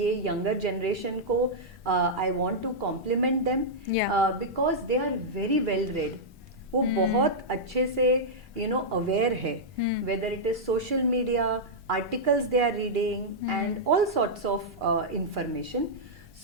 यंगर जनरेशन को I want to compliment them because they are very well read. वो बहुत अच्छे से अवेयर है, whether it is social media, articles they are reading and all sorts of information.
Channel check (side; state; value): both; normal; correlation -0.09